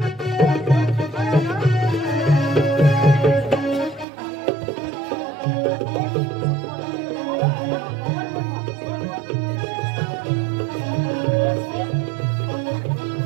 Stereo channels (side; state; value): left; drops out; at 4.0 s